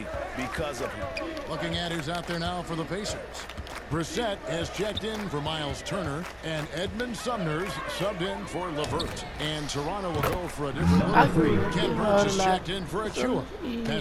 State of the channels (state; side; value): identical; both; correlation 1.00